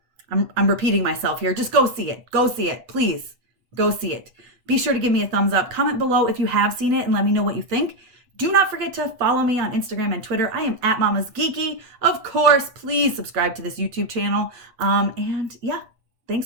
I'm repeating myself here. Just go see it. Go see it. Please go see it. Be sure to give me a thumbs up. Comment below if you have seen it and let me know what you think. Do not forget to follow me on Instagram and Twitter. I am at Mama's Geeky. Of course, please subscribe to this YouTube channel. And yeah,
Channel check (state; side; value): late; left; 8.3 ms